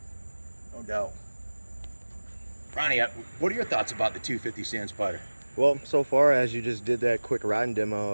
no doubt. Ronnie, what are your thoughts about the 250 Sand Spider? Well, so far as you just did that quick riding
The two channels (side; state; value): both; inverted; correlation -1.00